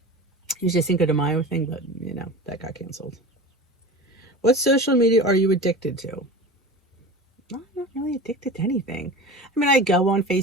usually Cinco de Mayo thing, but that got canceled. What social media are you addicted to? I'm not really addicted to anything. I mean, I go on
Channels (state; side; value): normal; both; correlation 0.34